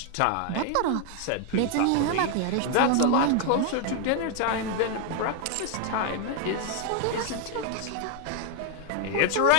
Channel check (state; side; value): different; both; correlation 0.00